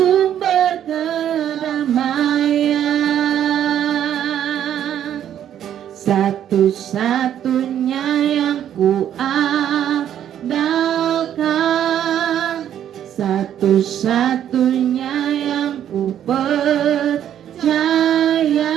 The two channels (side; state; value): left; quieter; 10.3 dB